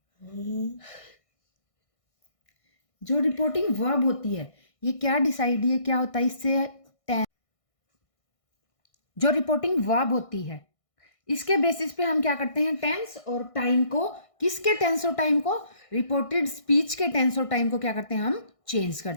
जो रिपोर्टिंग वर्ब होती है ये क्या डिसाइड, ये क्या होता है इससे, जो रिपोर्टिंग वर्ब होती है इसके बेसिस पे हम क्या करते हैं, टेंस और टाइम को, किसके टेंस और टाइम को, रिपोर्टेड स्पीच के टेंस और टाइम को क्या करते हैं, हम चेंज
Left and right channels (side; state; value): right; late; 1.6 ms